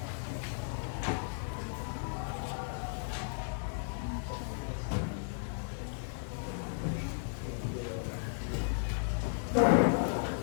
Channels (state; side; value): silent; right; digital silence